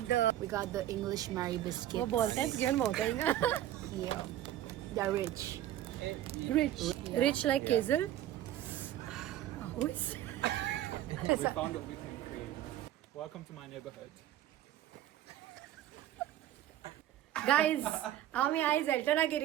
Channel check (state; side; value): quieter; left; 12.7 dB